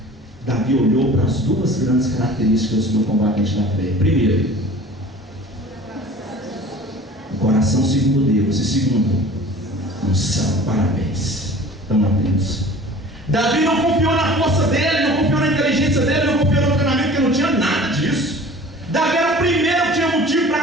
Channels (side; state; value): both; normal; correlation 0.44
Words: Davi olhou para as duas grandes características do combatente da fé. Primeiro, o coração segundo Deus. E segundo, unção. Parabéns. Estão atentos. Davi não confiou na força dele, não confiou na inteligência dele, não confiou no treinamento, porque não tinha nada disso. Davi era o primeiro que tinha motivo